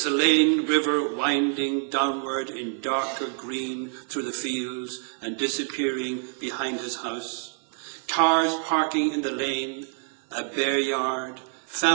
River winding downward in darker green through the fields and disappearing behind his house. Cars parking in the lane, a bare yard,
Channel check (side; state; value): left; silent; 57 dB below the other